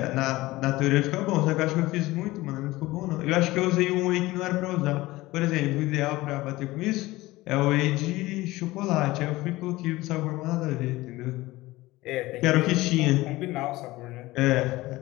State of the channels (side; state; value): right; quieter; 19.0 dB